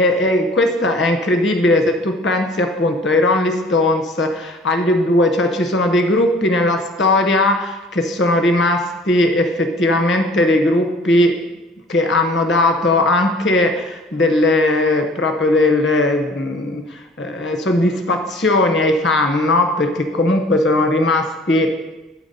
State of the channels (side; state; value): both; normal; correlation 0.50